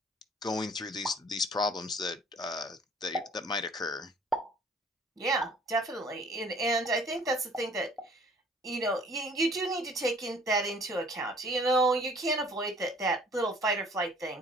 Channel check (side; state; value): both; normal; correlation 0.54